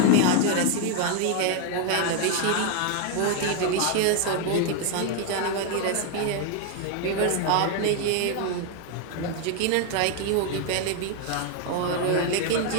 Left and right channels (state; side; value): different; both; correlation 0.01